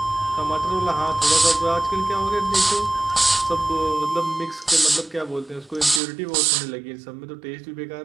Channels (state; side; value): drops out; left; at 6.0 s